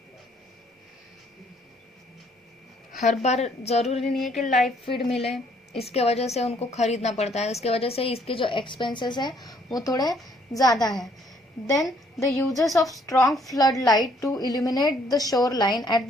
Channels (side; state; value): both; normal; correlation 0.65